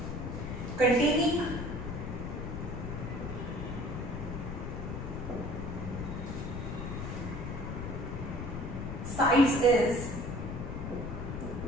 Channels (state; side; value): noise; left; rumble, 5 dB below the sound